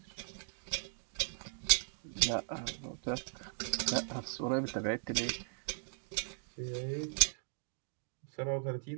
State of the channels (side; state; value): left; silent; digital silence